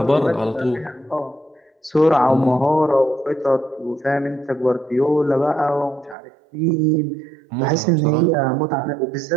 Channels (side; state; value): left; drops out; at 6.2 s